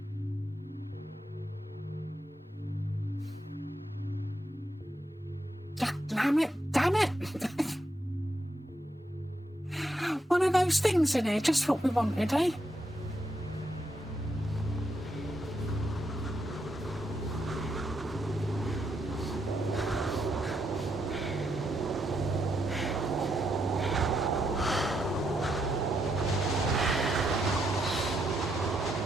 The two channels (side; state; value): both; normal; correlation 0.80